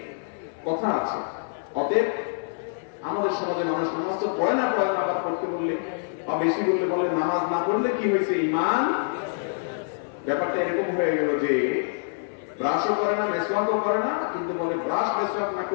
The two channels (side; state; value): right; silent; 56 dB below the other